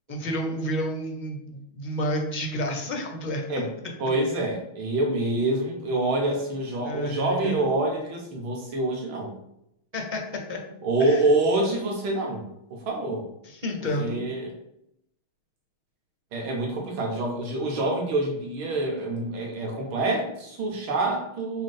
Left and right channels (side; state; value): left; late; 6.3 ms